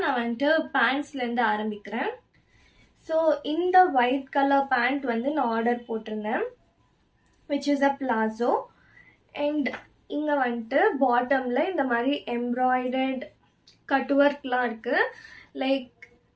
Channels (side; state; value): both; identical; correlation 1.00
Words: நான் வந்துட்டு பேண்ட்ஸ்லேருந்து ஆரம்பிக்கிறேன். ஸோ இந்த ஒயிட் கலர் பேண்ட் வந்து நான் ஆர்டர் போட்டிருந்தேன், which is a palazzo. And இங்கே வந்துட்டு பாட்டமில் இந்த மாதிரி எம்ப்ராய்டர்ட் கட் ஒர்க்லாம் இருக்குது. லைக்